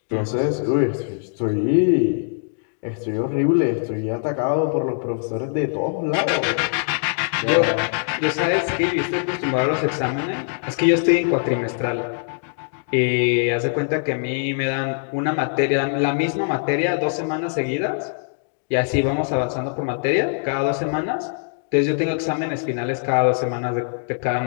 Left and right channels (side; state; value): right; silent; digital silence